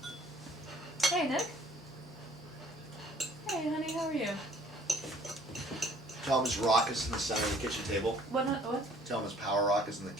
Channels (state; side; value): normal; both; correlation 0.56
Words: Hey, Nick. Hey, honey, how are you? Tell him his rock is in the center of the kitchen table. What? Tell him his power rock is in the